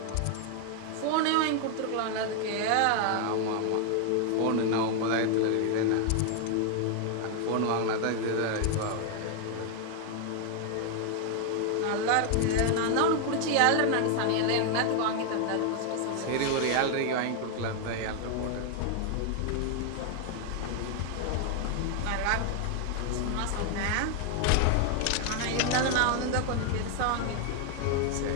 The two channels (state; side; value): different; both; correlation 0.00